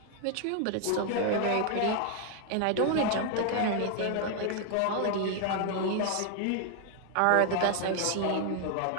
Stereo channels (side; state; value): both; different; correlation 0.00